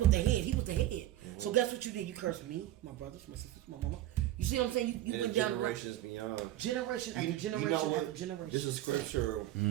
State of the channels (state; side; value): quieter; left; 14.0 dB